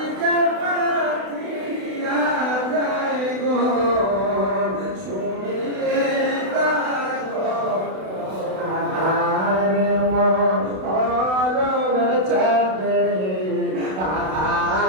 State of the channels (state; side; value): late; left; 32 ms